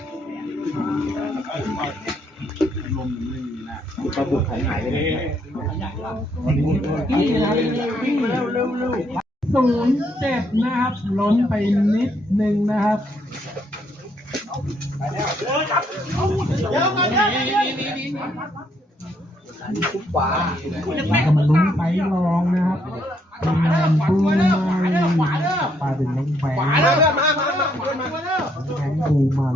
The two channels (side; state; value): both; normal; correlation 0.72